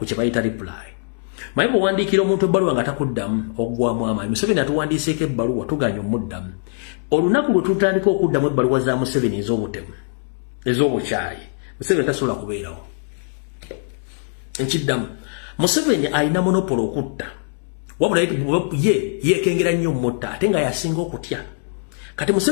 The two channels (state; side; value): silent; right; 65 dB below the other